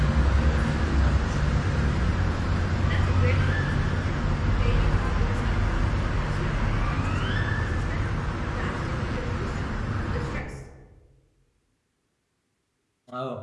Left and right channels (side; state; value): both; identical; correlation 1.00